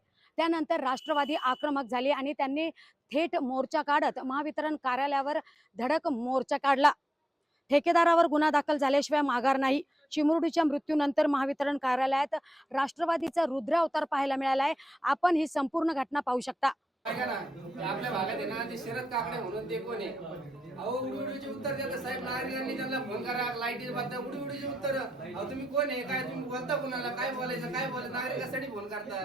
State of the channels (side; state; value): both; normal; correlation 0.88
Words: त्यानंतर राष्ट्रवादी आक्रमक झाली आणि त्यांनी थेट मोर्चा काढत महावितरण कार्यालयावर धडक मोर्चा काढला. ठेकेदारावर गुन्हा दाखल झाल्याशिवाय माघार नाही. चिमुरडीच्या मृत्यूनंतर महावितरण कार्यालयात राष्ट्रवादीचा रुद्र अवतार पाहायला मिळाला आहे. आपण ही संपूर्ण घटना पाहू शकता. आपल्या भागात आहे ना, ते शरद काकडे म्हणून ते कोण आहे, अहो उडीचे उत्तर देतात साहेब. नागरिकांनी त्यांना फोन करा, लाईटीचे बाबतीत उडीचे उत्तर. अहो तुम्ही कोण आहे, काय तुम्ही बोलता, कुणाला काय बोलायचं, काय बोलायचं, नागरिकांसाठी फोन